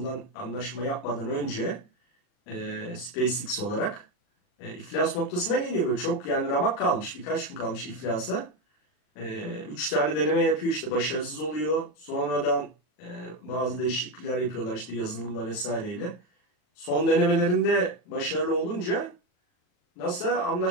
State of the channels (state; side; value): late; right; 39 ms